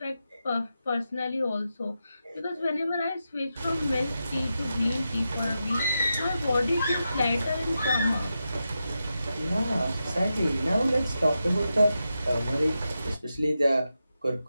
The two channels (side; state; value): both; inverted; correlation -0.89